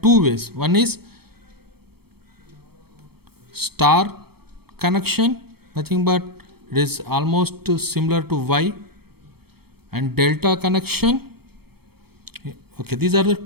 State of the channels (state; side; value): late; left; 0.96 ms